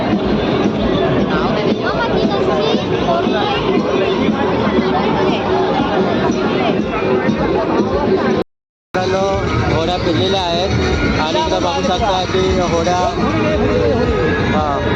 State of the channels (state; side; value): identical; both; correlation 1.00